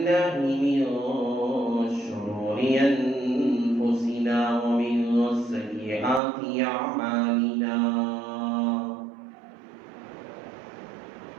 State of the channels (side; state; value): left; drops out; at 6.2 s